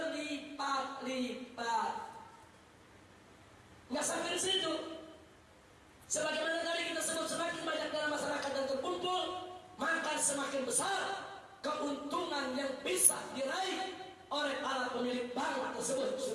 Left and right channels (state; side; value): identical; both; correlation 1.00